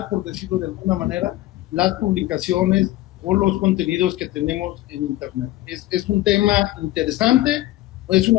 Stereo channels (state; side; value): quieter; right; 16.4 dB